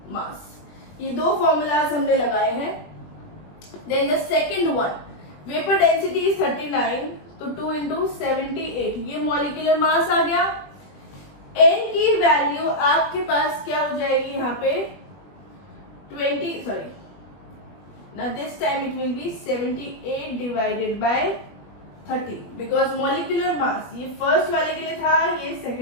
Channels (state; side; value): late; right; 20 ms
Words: mass, ये 2 फॉर्मूलाज हमने लगाए हैं। Then the second one, vapour density is 39, तो 2 इंटू 78, ये मॉलिक्यूलर मास आ गया। n की वैल्यू आपके पास क्या हो जाएगी यहाँ पे 20, sorry now this time it will be 78 divided by 30, because molecular mass ये फर्स्ट वाले के लिए था, ये